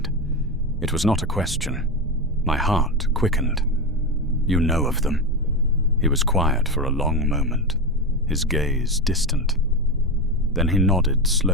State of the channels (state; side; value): normal; both; correlation 0.16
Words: It was not a question. My heart quickened. "You know of them." He was quiet for a long moment, his gaze distant. Then he nodded